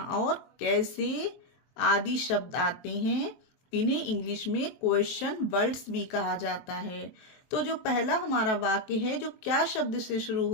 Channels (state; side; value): late; right; 23 ms